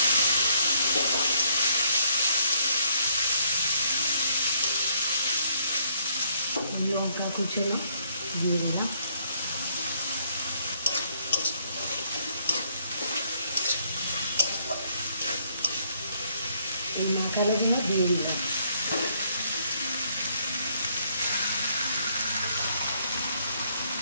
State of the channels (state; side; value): inverted; both; correlation -0.68